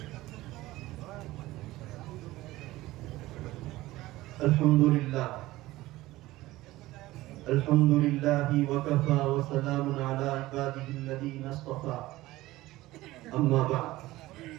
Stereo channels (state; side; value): quieter; left; 17.7 dB